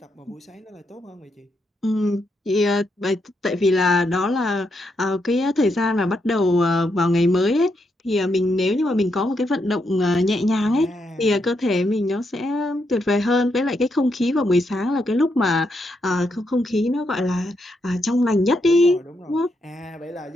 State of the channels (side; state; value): both; normal; correlation 0.80